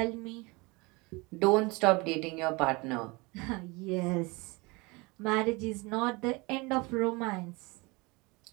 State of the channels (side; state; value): left; quieter; 25.7 dB